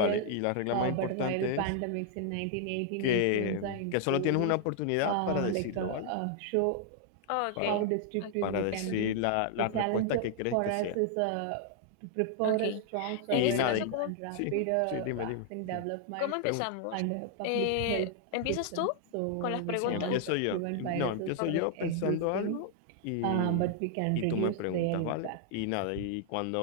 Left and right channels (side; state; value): both; different; correlation 0.00